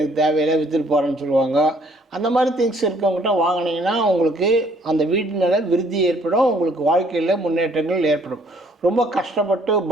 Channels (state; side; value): normal; both; correlation 0.62